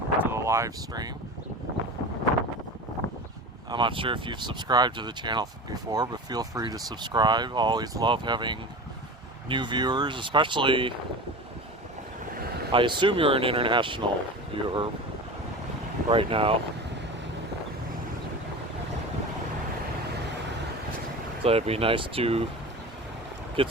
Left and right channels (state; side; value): normal; both; correlation 0.31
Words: the live stream. I'm not sure if you've subscribed to the channel before, but feel free to subscribe. I always love having new viewers, especially, I assume you're an international viewer right now. So it'd be nice to get